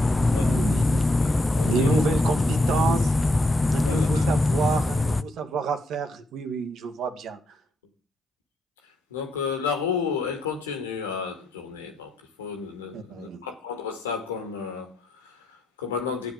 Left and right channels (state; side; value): normal; both; correlation 0.78